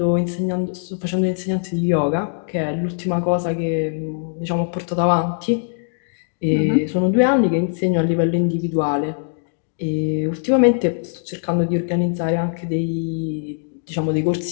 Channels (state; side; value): silent; right; digital silence